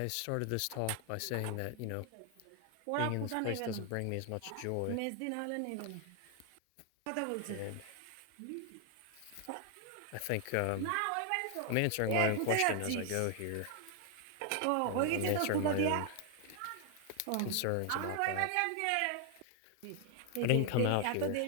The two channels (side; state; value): both; different; correlation 0.00